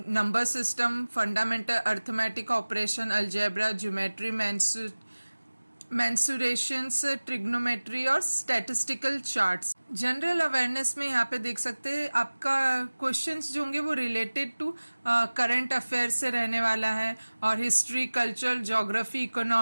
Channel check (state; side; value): inverted; both; correlation -1.00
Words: system, fundamental arithmetic operation, algebra, geometry, mensurations, trigonometry और स्टैटिस्टिकल चार्ट्स। जनरल अवेयरनेस में यहाँ पे देख सकते हैं आपका क्वेश्चंस जो होंगे वो रिलेटेड टू करंट अफेयर से रहने वाला है, और history, culture, geography,